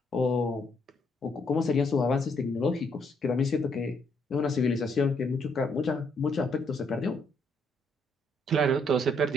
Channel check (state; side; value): normal; both; correlation 0.71